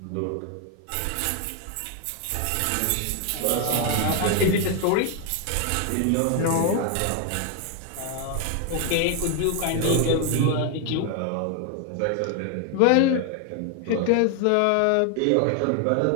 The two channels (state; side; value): different; both; correlation 0.01